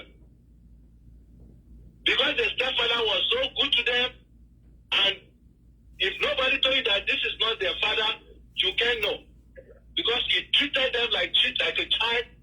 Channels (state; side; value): identical; both; correlation 1.00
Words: because the stepfather was so good to them. And if nobody told you that this is not their father, you can't know, because he treated them like a child,